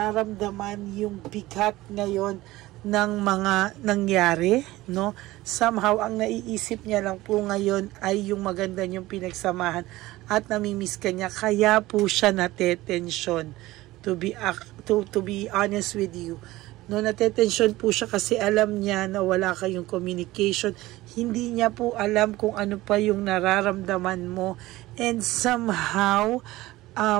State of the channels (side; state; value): left; quieter; 17.9 dB